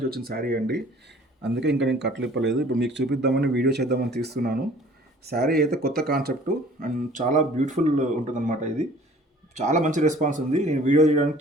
వచ్చిన శారీ అండి. అందుకే ఇంకా నేను కట్లు ఇప్పలేదు. ఇప్పుడు మీకు చూపిద్దామని వీడియో చేద్దామని తీస్తున్నాను. శారీ అయితే కొత్త కాన్సెప్ట్ అండ్ చాలా బ్యూటిఫుల్ ఉంటుందన్నమాట. ఇది చాలా మంచి రెస్పాన్స్ ఉంది. నేను వీడియో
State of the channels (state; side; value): normal; both; correlation 0.51